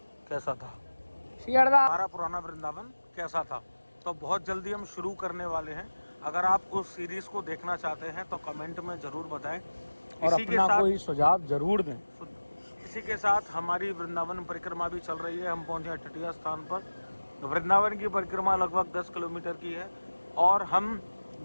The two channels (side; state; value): both; inverted; correlation -1.00